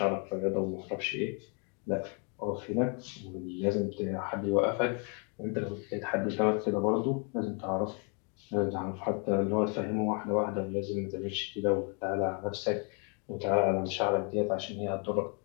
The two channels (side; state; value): right; quieter; 37.0 dB